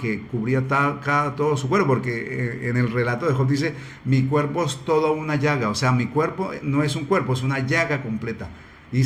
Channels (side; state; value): both; identical; correlation 1.00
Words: cubría todo su cuerpo, porque en el relato de Job dice, mi cuerpo es toda una llaga, o sea, mi cuerpo no es un cuerpo, es una llaga completa.